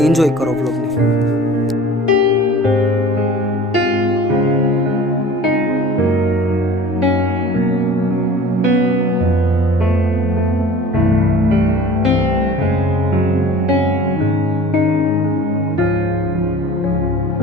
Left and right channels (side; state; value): both; normal; correlation 0.43